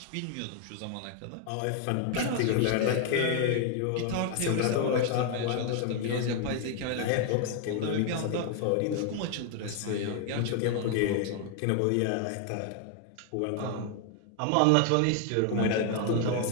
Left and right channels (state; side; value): different; both; correlation 0.00